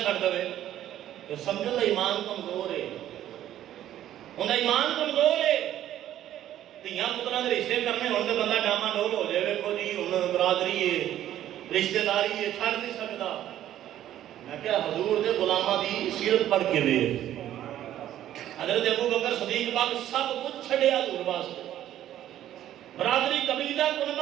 چھڑ دے تو سمجھو دا ایمان کمزور ہے، انہاں ایمان کمزور ہے، تیاں پتران دے رشتے کرنے ہونے بندہ ڈاما ڈول ہو جائے، ویکھو جی انہاں برادری ہے، رشتہ داری ہے، چھڑ نہیں سکتا۔ میں کہا حضور دے غلامہ دی سیرت پڑھ کے دے، حضرت ابو بکر صدیق پاک سب کچھ چھڑیا حضور واسطے، برادری قبیلہ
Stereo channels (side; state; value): left; quieter; 12.2 dB